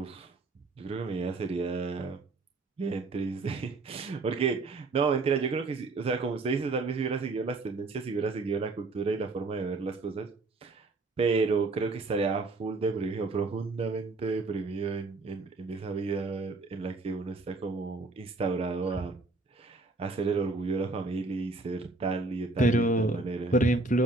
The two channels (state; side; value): quieter; left; 3.4 dB